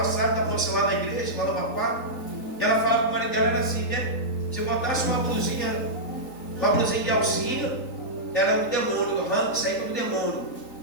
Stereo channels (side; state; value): right; late; 3.8 ms